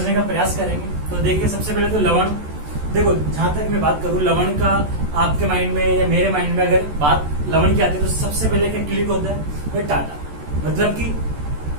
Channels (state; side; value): late; left; 14 ms